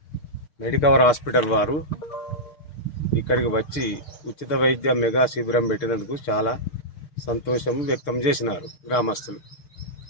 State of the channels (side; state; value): right; late; 6.6 ms